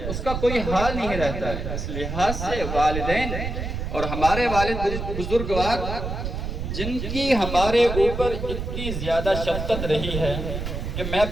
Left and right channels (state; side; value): noise; right; rumble, 4 dB below the sound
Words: اس کا کوئی حال نہیں رہتا ہے۔ اس لحاظ سے والدین اور ہمارے والد بزرگوار جن کی ہمارے اوپر اتنی زیادہ شفقت رہی ہے کہ میں